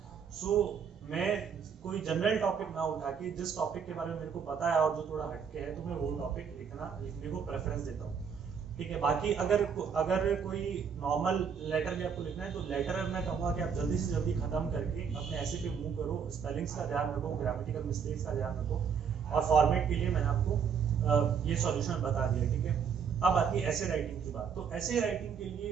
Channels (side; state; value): left; quieter; 6.8 dB